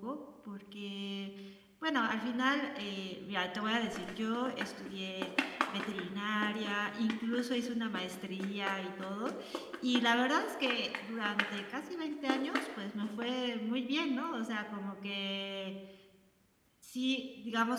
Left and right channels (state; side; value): identical; both; correlation 1.00